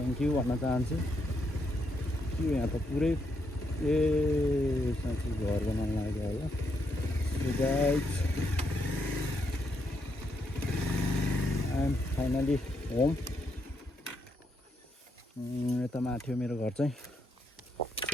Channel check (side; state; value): both; normal; correlation 0.78